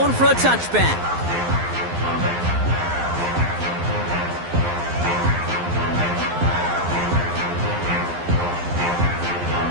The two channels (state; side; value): late; left; 12 ms